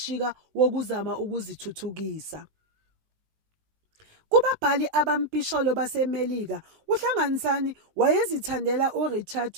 wokuzama ukuzithuthukisa. Kubabhali abampisholo baseMelika, uHlanganisani wayezithandela uRichard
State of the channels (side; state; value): left; late; 19 ms